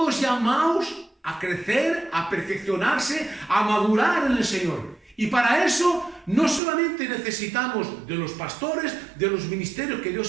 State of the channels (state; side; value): drops out; left; at 6.6 s